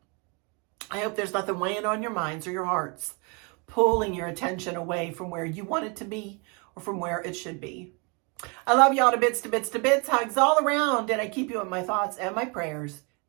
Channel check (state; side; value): quieter; left; 32.4 dB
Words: I hope there's nothing weighing on your minds or your hearts, pulling your attention away from where you want it to be or from where it should be. I love y'all to bits, to bits, to bits. Hugs all around, and I keep you in my thoughts and my prayers